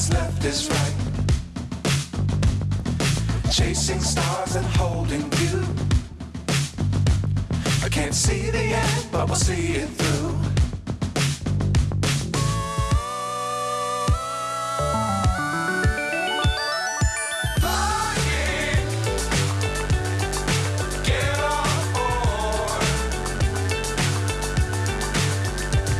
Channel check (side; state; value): both; identical; correlation 1.00